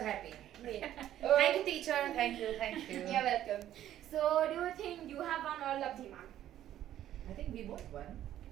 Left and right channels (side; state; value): left; quieter; 12.1 dB